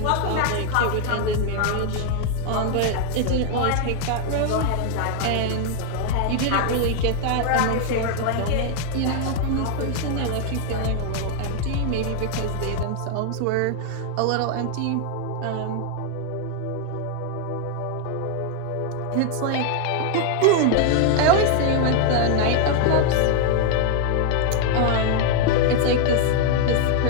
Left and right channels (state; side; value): different; both; correlation 0.00